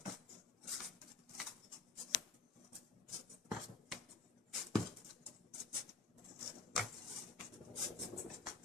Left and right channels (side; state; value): right; quieter; 4.2 dB